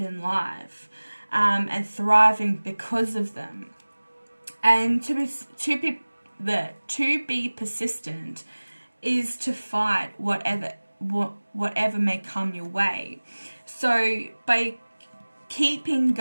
life, and thriving because of them. And to be persistent is to fight whatever may come your way. So by keeping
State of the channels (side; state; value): both; inverted; correlation -1.00